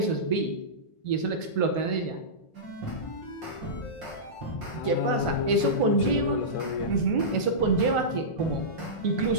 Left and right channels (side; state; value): right; late; 1.4 ms